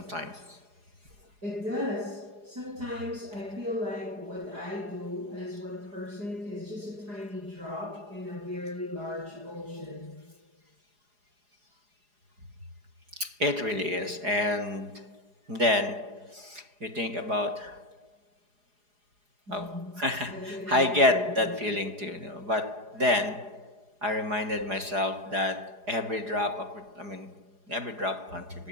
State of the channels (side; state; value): left; late; 4.8 ms